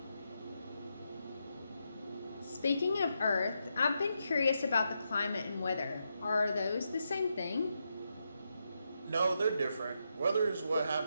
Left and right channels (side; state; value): both; inverted; correlation -0.84